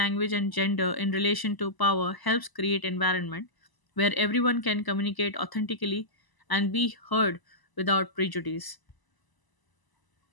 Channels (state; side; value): late; right; 1.0 ms